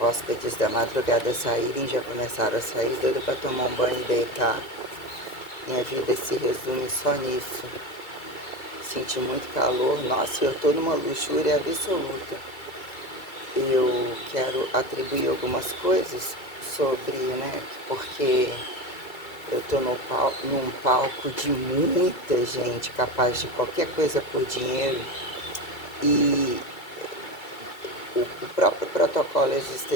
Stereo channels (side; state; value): right; late; 2.3 ms